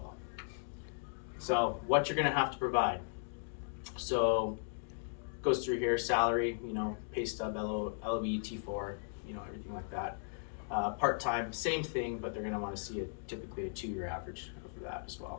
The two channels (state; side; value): silent; right; digital silence